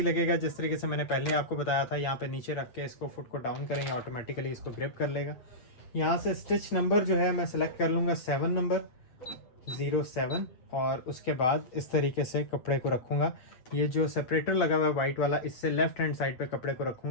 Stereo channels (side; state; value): right; late; 8.1 ms